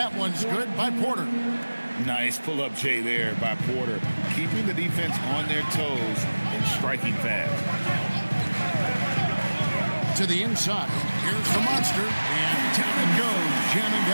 one's good by Porter. Nice pull-up Jay there by Porter, keeping the defense on their toes and striking fast. To the inside. Here's the monster. And down it goes, jamming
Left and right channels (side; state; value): both; inverted; correlation -1.00